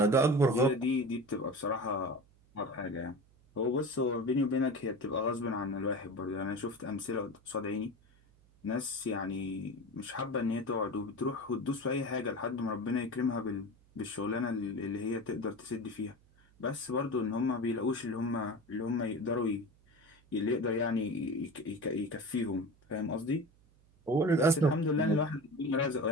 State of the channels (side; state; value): right; noise; hum, 29 dB below the sound